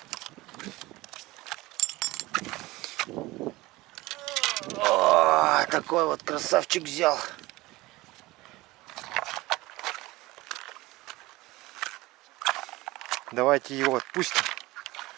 О, такой вот красавчик взял. Давайте его отпустим.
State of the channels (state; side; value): quieter; left; 19.9 dB